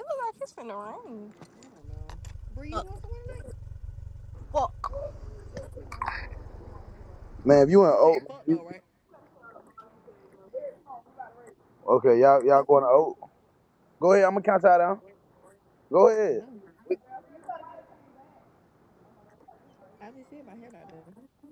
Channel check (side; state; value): both; identical; correlation 1.00